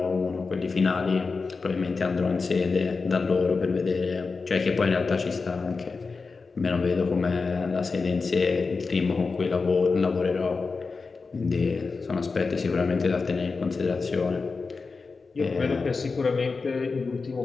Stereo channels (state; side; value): quieter; right; 4.4 dB